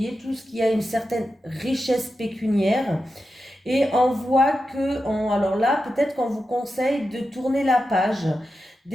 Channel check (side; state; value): both; normal; correlation 0.90